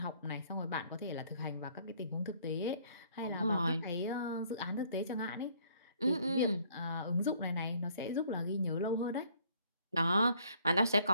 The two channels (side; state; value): both; inverted; correlation -0.62